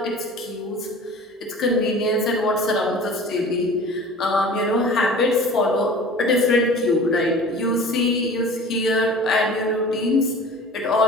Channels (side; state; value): both; normal; correlation 0.42